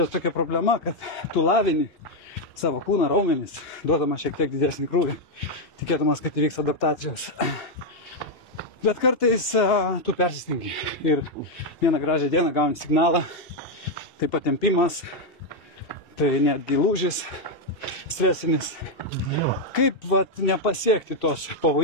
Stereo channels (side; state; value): both; normal; correlation 0.01